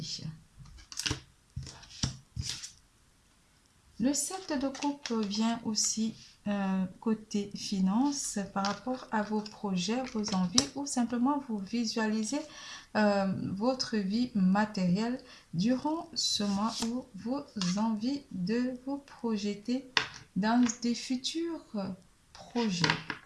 Le 7 de coupe vient aussi côté finance par rapport à vos projets, vos envies ou simplement vous visualisez votre vie matérielle durant ce mois où vous avez envie de vous projeter dans des futurs projets.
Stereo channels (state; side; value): identical; both; correlation 1.00